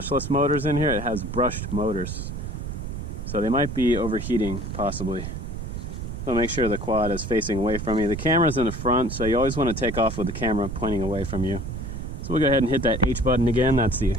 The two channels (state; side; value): noise; right; rumble, 6 dB below the sound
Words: motors in here. It has brushed motors. So they might be overheating, possibly. So make sure the quad is facing away from you. The camera's in the front, so you always want to take off with the camera pointing away from you. So we'll go ahead and hit that H button again. That's the